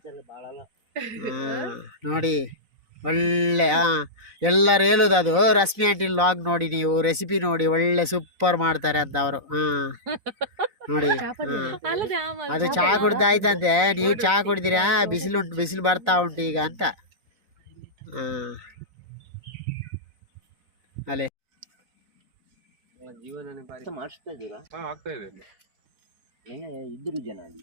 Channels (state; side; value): late; left; 4.0 ms